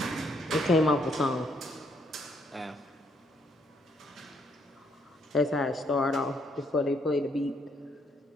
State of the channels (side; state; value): both; normal; correlation 0.71